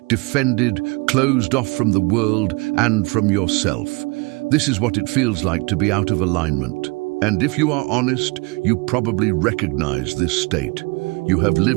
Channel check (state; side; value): quieter; left; 27.8 dB